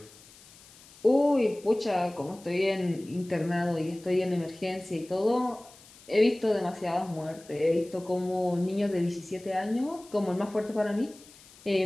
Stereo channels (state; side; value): noise; left; hiss, 23 dB below the sound